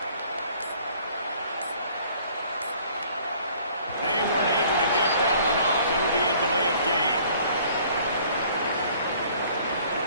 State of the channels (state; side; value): inverted; both; correlation -0.56